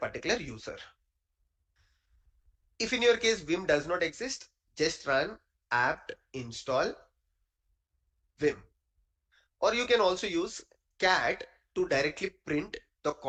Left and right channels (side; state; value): both; identical; correlation 1.00